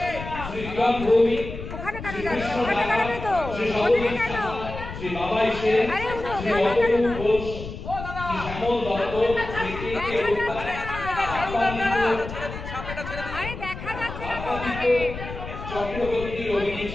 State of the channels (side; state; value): left; noise; rumble, 9 dB below the sound